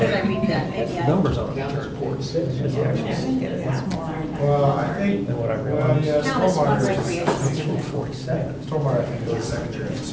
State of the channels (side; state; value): both; identical; correlation 1.00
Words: I read that? Has Yeah. numbers on it, which are reports, has the actual, It's more. Well, I think. than what I Well, realized. yeah, Count as one stormwater is- recreation. It's from 47. Stormwater, I think, is a secondary